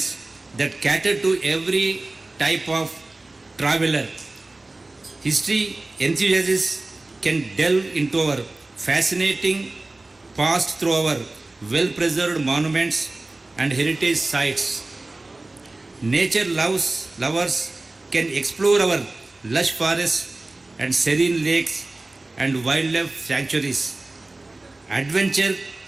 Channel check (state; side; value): quieter; left; 3.0 dB